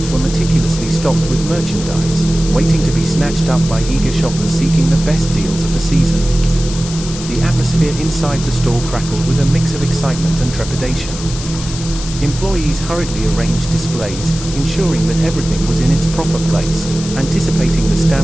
were meticulously stocked with merchandise, waiting to be snatched up by eager shoppers seeking the best deals of the season. The atmosphere inside the store crackled with a mix of excitement and trepidation. Employees hurriedly arranged displays, ensuring that everything was in its proper place, anticipating the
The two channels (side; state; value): left; noise; hiss, 11 dB below the sound